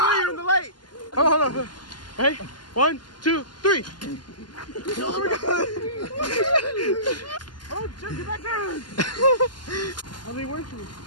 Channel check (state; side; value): late; right; 0.71 ms